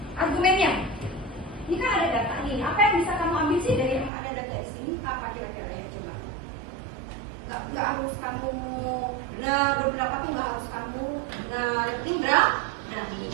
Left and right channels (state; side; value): drops out; left; at 4.1 s